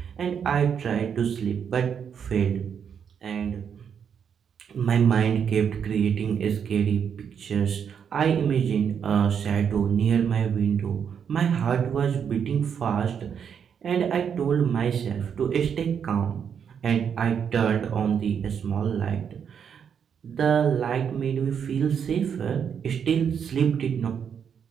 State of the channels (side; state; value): left; quieter; 7.5 dB